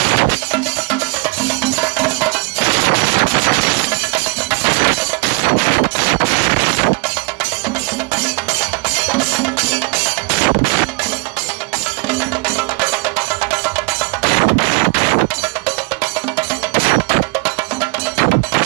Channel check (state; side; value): quieter; left; 29.0 dB